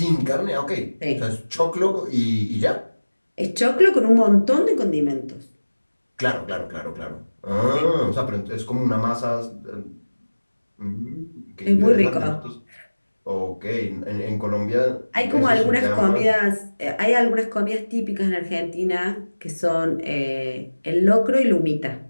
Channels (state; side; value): inverted; both; correlation -1.00